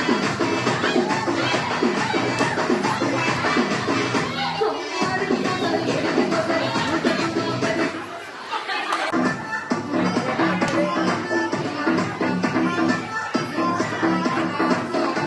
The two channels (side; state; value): both; identical; correlation 1.00